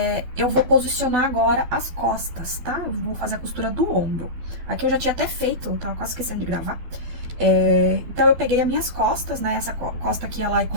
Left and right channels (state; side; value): late; left; 12 ms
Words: Eu vou posicionar agora as costas, tá? Eu vou fazer a costura do ombro. Aqui eu já tinha até feito, tava quase esquecendo de gravar. Então, eu peguei as minhas costas, né? Essa costa aqui, ela é